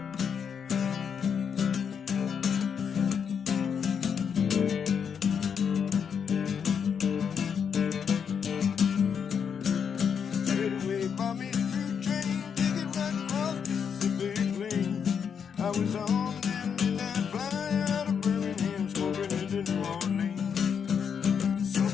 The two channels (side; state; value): right; quieter; 7.1 dB